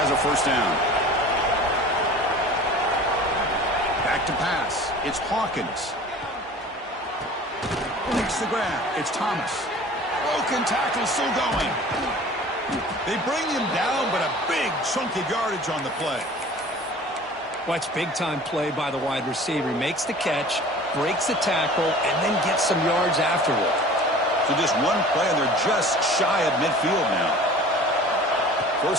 a 1st down. Back to pass. It's Hawkins. Makes the grab. It's Thomas. Broken tackle still going. They bring him down, but a big chunk of yardage on the play. Watch big-time play by the wide receiver. He makes the catch, breaks the tackle, and then gets some yards afterward. So just one play, and they're just shy of midfield now.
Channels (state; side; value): normal; both; correlation 0.43